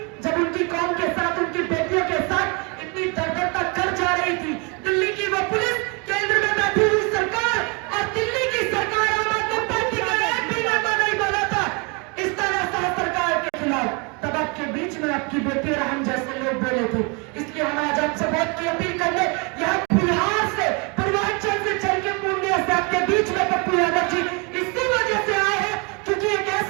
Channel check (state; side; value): quieter; left; 31.7 dB